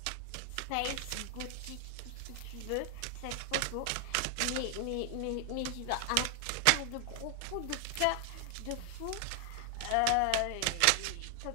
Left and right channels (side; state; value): both; different; correlation 0.00